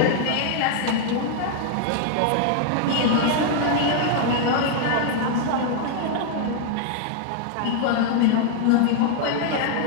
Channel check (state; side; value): different; both; correlation 0.00